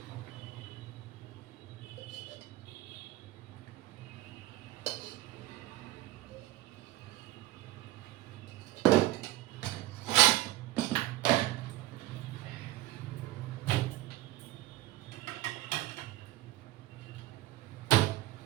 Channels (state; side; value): quieter; left; 16.8 dB